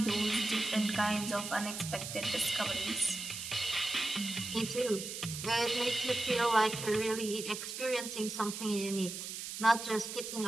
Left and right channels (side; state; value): right; noise; hiss, 7 dB below the sound